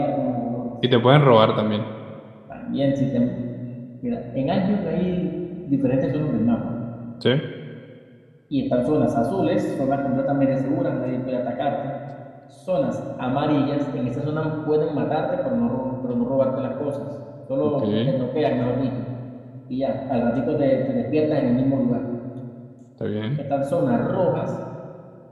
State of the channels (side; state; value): both; identical; correlation 1.00